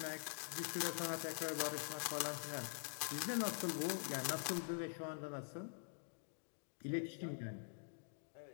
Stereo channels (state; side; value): silent; right; digital silence